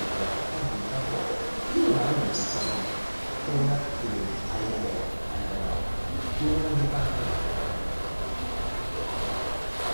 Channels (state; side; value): inverted; both; correlation -1.00